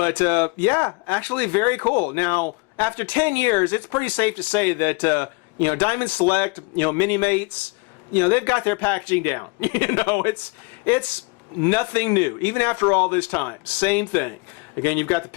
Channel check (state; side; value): quieter; right; 28.8 dB